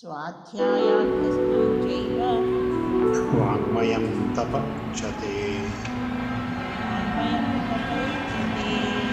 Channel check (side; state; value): both; identical; correlation 1.00